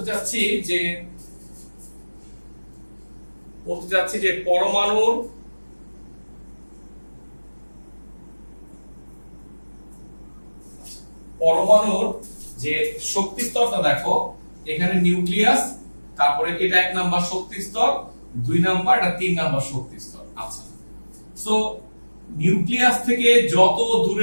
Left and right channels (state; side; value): inverted; both; correlation -1.00